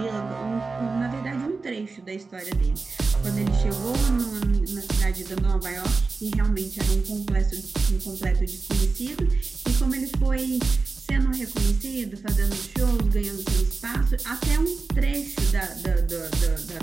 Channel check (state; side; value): quieter; left; 4.1 dB